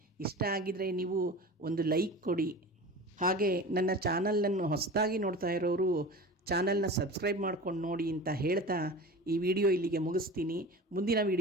ಇಷ್ಟ ಆಗಿದರೆ ನೀವು ಒಂದು ಲೈಕ್ ಕೊಡಿ. ಹಾಗೆ ನನ್ನ ಚಾನಲನ್ನು ಹೊಸದಾಗಿ ನೋಡ್ತಾ ಇರೋರು ಚಾನಲ್ನ ಸಬ್ಸ್ಕ್ರೈಬ್ ಮಾಡ್ಕೊಂಡು ನೋಡಿ ಅಂತ ಹೇಳ್ತಾ ಈ ವಿಡಿಯೋ ಇಲ್ಲಿಗೆ ಮುಗಿಸ್ತೀನಿ. ಮುಂದಿನ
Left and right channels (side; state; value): both; normal; correlation 0.34